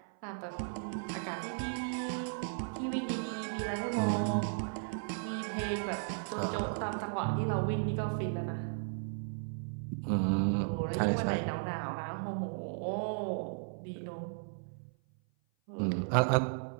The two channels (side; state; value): left; silent; 54 dB below the other